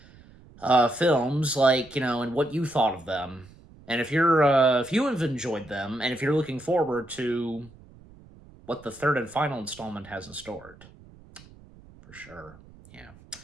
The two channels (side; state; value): right; noise; rumble, 23 dB below the sound